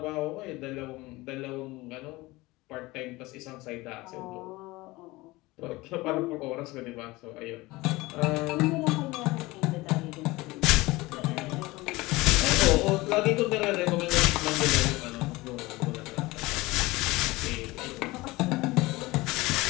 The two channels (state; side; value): quieter; right; 21.0 dB